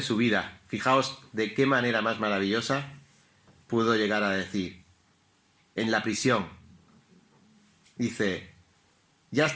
su vida, fijaos de qué manera más maravillosa pudo llegar a decir, en la prisión, dice, ya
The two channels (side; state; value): both; identical; correlation 1.00